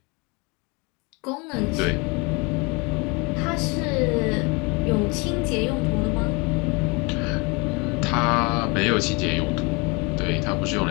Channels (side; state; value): right; quieter; 28.6 dB